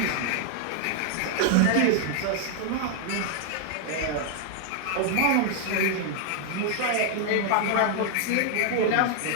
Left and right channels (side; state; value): both; different; correlation 0.00